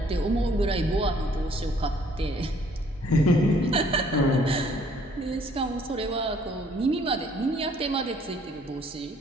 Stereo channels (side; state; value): both; normal; correlation 0.61